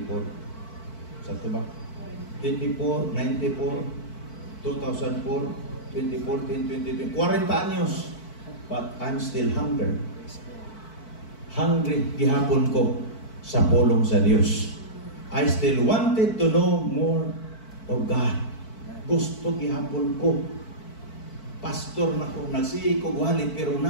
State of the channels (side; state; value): right; late; 4.5 ms